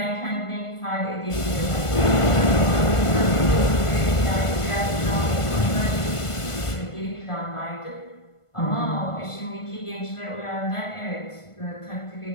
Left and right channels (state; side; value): late; right; 1.5 ms